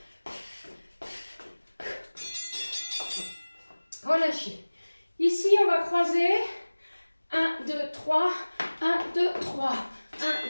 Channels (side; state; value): both; inverted; correlation -1.00